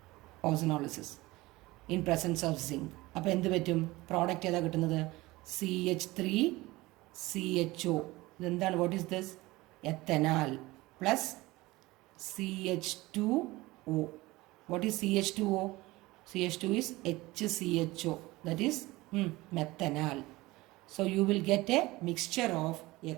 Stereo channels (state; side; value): quieter; left; 20.2 dB